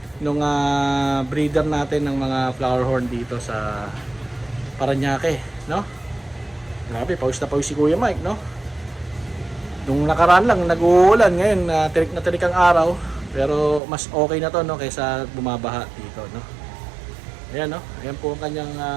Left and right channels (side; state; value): left; drops out; at 13.8 s